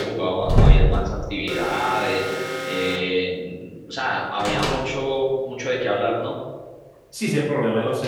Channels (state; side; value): identical; both; correlation 1.00